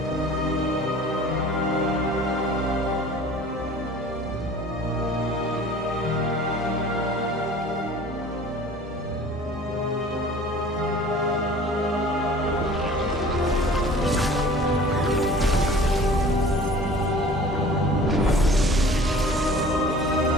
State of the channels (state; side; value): normal; both; correlation 0.46